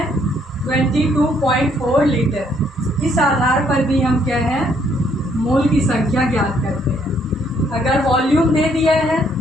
22.4 लीटर। इस आधार पर भी हम क्या है मोल की संख्या ज्ञात करते हैं। अगर वॉल्यूम दे दिया है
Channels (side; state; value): both; normal; correlation 0.68